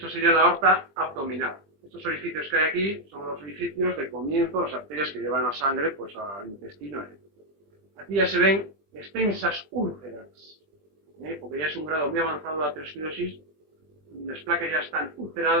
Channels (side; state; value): left; late; 20 ms